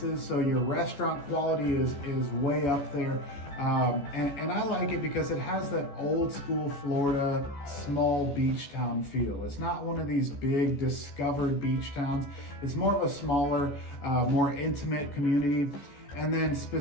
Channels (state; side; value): late; right; 14 ms